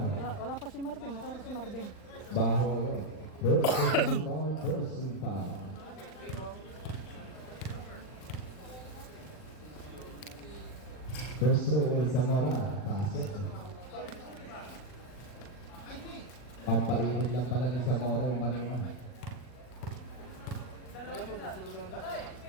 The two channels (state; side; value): late; right; 39 ms